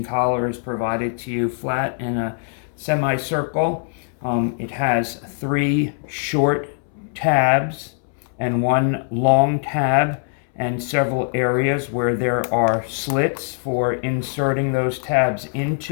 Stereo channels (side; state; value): right; silent; 64 dB below the other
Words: collar is provided to you flat in a semicircle. It has 3 short tabs and 1 long tab, and several areas where there are slits for inserting those tabs